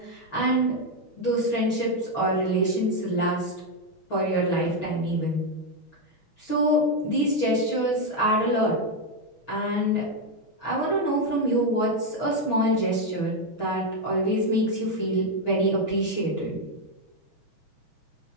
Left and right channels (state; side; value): late; right; 6.3 ms